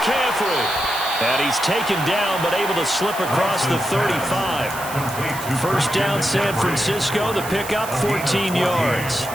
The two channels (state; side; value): noise; right; hiss, 12 dB below the sound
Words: And he's taken down, but able to slip across the 35. First down, San Francisco. The pickup, 14 yards.